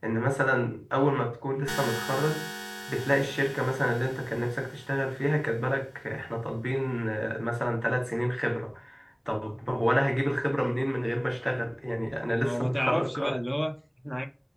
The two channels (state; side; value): identical; both; correlation 1.00